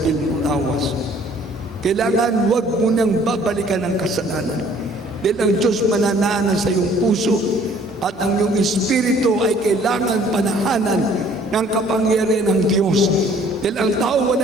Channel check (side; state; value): both; normal; correlation 0.56